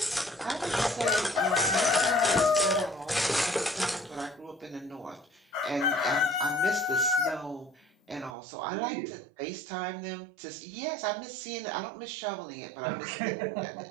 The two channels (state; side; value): drops out; left; at 8.3 s